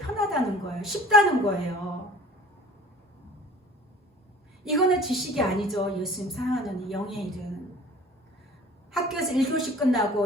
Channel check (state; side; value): normal; both; correlation 0.47